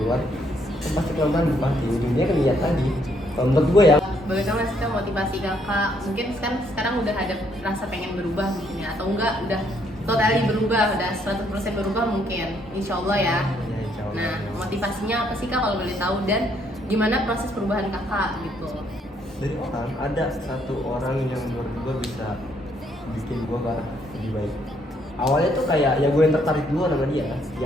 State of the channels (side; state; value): both; normal; correlation 0.70